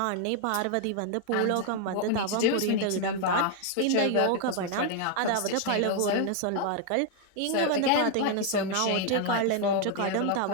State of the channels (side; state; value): both; different; correlation 0.00